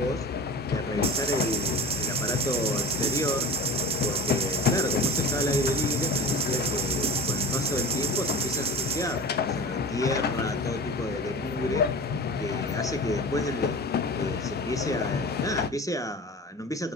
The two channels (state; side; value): normal; both; correlation 0.36